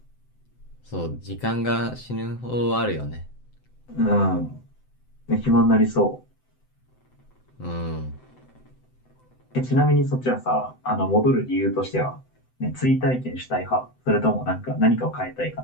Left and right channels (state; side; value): late; right; 7.9 ms